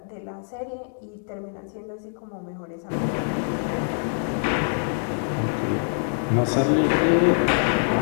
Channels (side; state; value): right; silent; digital silence